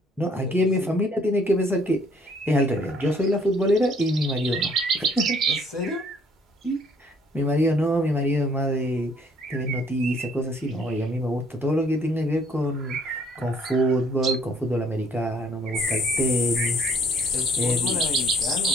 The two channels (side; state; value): both; normal; correlation 0.61